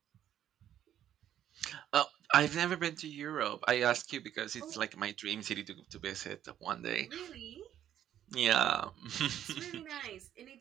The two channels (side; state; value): left; quieter; 10.8 dB